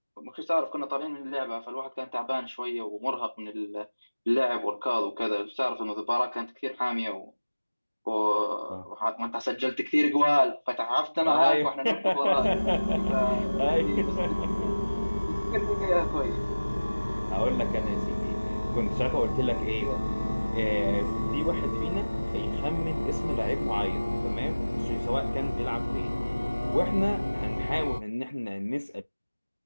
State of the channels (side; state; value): both; inverted; correlation -1.00